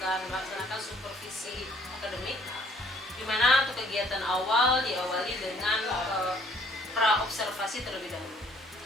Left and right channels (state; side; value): normal; both; correlation 0.61